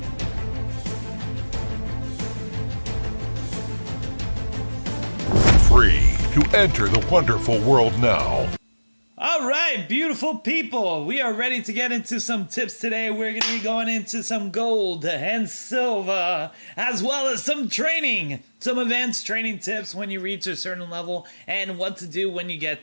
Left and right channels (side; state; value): both; inverted; correlation -1.00